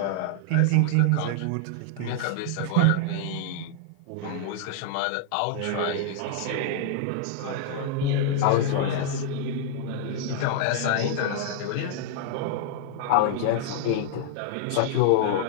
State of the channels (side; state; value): both; different; correlation -0.01